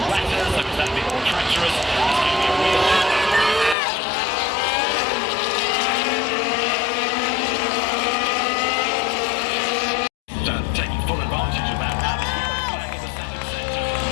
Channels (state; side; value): drops out; right; at 3.8 s